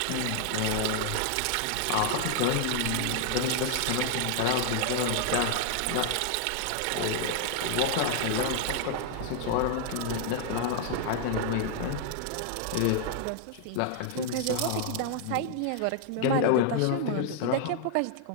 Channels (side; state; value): both; different; correlation 0.00